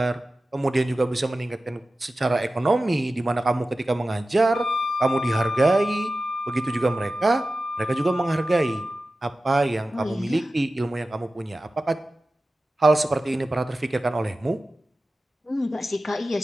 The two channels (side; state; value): both; normal; correlation 0.94